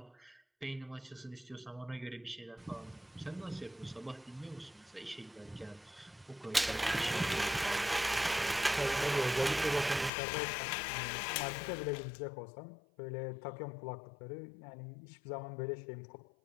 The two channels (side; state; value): right; drops out; at 10.1 s